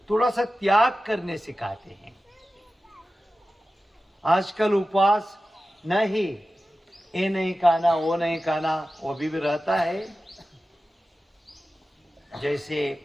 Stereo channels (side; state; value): both; normal; correlation 0.94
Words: थोड़ा सा त्याग करने सिखाते हैं। आजकल उपवास नहीं, ये नहीं खाना, वो नहीं खाना, वो भी रहता है।